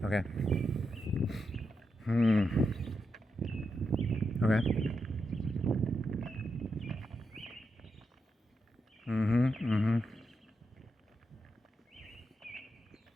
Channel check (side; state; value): both; normal; correlation 0.85